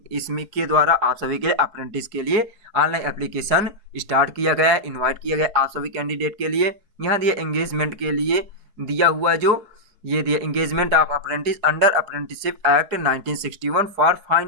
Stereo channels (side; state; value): left; late; 4.6 ms